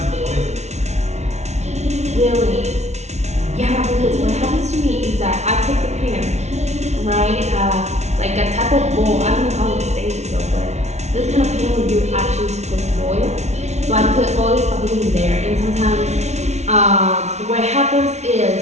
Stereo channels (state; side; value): late; left; 0.32 ms